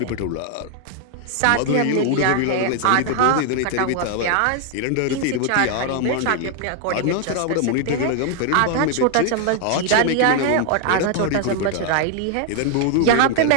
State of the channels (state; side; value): different; both; correlation 0.00